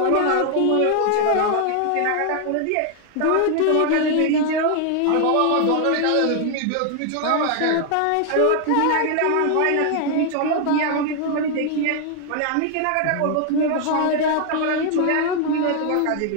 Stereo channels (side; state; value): both; different; correlation 0.00